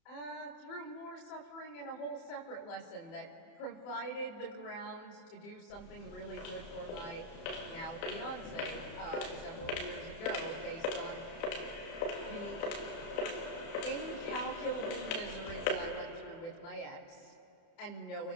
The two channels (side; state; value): right; late; 30 ms